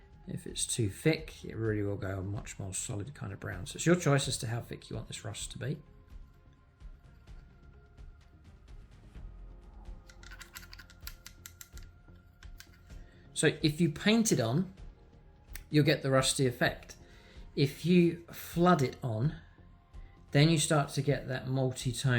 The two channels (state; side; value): identical; both; correlation 1.00